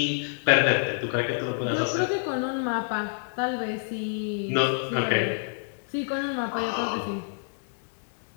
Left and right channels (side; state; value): right; silent; digital silence